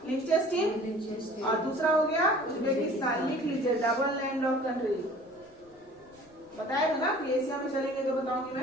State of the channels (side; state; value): left; noise; rumble, 30 dB below the sound